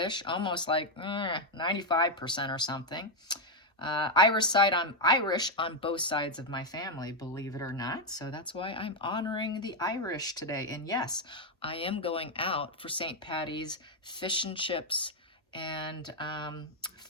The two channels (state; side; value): normal; both; correlation 0.02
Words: almost like 95% or something. I'm Irish on both sides of my family, believe it or not. So that's why I'm honoring the Irish today. And yes, I am going out for St. Patty's fish and chips and